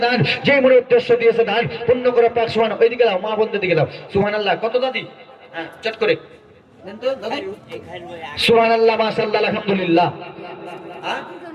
দান, যে মনে উদ্দেশ্য দিয়েছে দান পূর্ণ করে পাক সুবহান। ওইদিকে দাও মা বন্ধের দিকে দাও। সুবহানাল্লাহ। কত দাদি? হ্যাঁ চট করে দেন তো দাদি। সুবহানাল্লাহ, মাশাআল্লাহ, আলহামদুলিল্লাহ।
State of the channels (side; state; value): both; identical; correlation 1.00